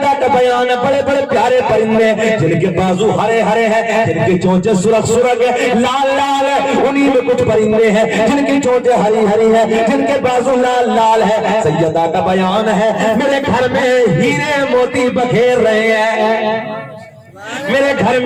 کا بیان ہے، بڑے بڑے پیارے پرندے جن کے بازو ہرے ہرے ہیں، جن کے چونچے سرخ سرخ لال لال ہے، انہی میں کچھ پرندے ہیں جن کی چونچے ہری ہری ہیں، جن کے بازو لال لال ہے۔ سیدہ کا بیان ہے میرے گھر میں ہیرے موتی بکھیر رہے ہیں، میرے گھر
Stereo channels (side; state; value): both; identical; correlation 1.00